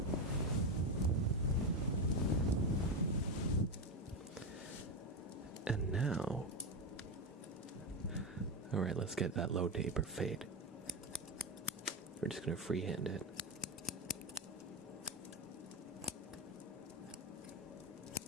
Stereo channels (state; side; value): normal; both; correlation 0.13